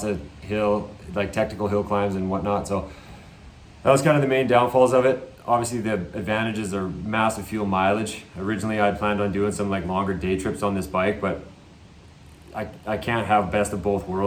of technical hill climbs and whatnot. So that was kind of the main downfalls of it. Obviously the advantages are massive fuel mileage. Originally I'd planned on doing some longer day trips on this bike, but I can't have best of both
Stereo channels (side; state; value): both; identical; correlation 1.00